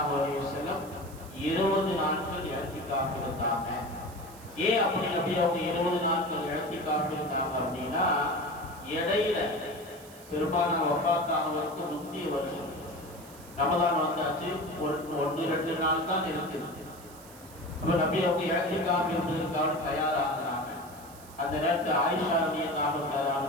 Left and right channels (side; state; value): right; noise; hiss, 20 dB below the sound